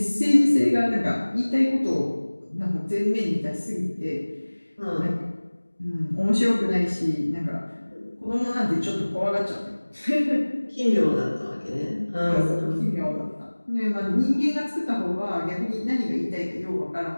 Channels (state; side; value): inverted; both; correlation -1.00